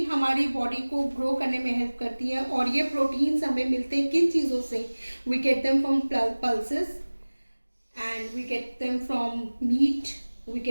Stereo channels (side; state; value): both; inverted; correlation -1.00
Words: हमारी बॉडी को grow करने में हेल्प करती है और ये प्रोटीन्स हमें मिलते हैं किन चीज़ों से? We get them from pulses and we get them from meat, we